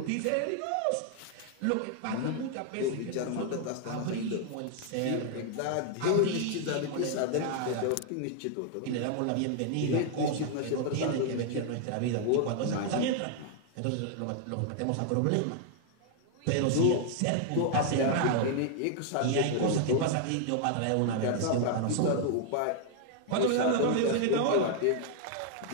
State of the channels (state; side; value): different; both; correlation 0.00